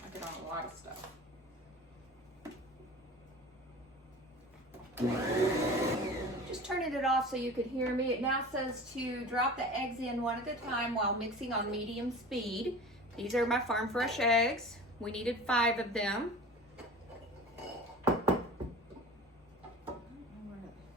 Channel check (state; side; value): normal; both; correlation 0.37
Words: I get on a lot of stuff. Just turning it off so you could hear me. It now says to drop the eggs in one at a time while mixing on medium speed. These are my farm fresh eggs. We needed 5 of them.